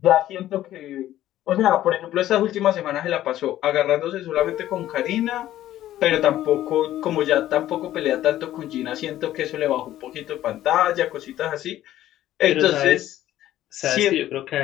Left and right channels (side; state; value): right; quieter; 13.3 dB